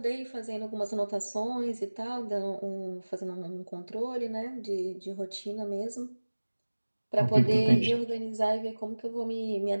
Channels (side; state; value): both; inverted; correlation -1.00